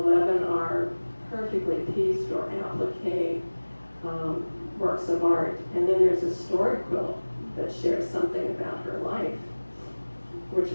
are perfectly pieced or applique works of art, and then there's a story quilt that shares something about her life. Which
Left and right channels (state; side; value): inverted; both; correlation -1.00